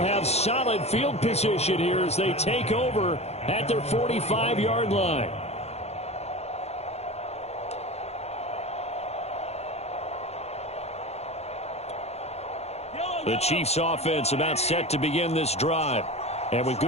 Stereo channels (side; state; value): right; late; 0.31 ms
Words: solid field position here as they take over at their 45-yard line. The Chiefs offense about set to begin this drive. And with